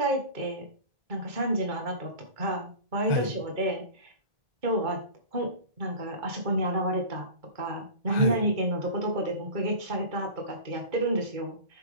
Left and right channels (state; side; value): late; left; 2.2 ms